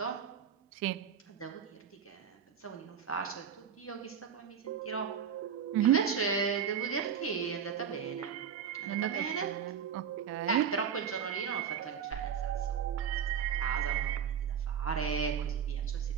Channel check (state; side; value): quieter; left; 7.8 dB